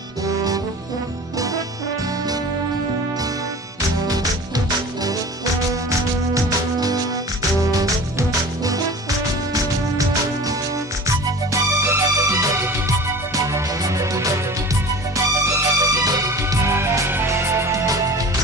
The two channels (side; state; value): both; normal; correlation 0.38